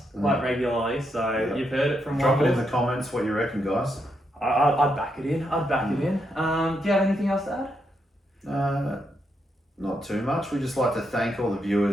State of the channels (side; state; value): both; normal; correlation 0.80